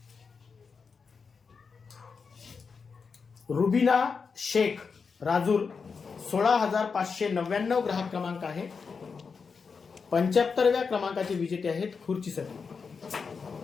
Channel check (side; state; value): right; quieter; 5.3 dB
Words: रुबिना शेख राजूर 16,599 ग्राहक क्रमांक आहे. 75व्या क्रमांकाचे विजेते आहेत खुर्चीसाठी.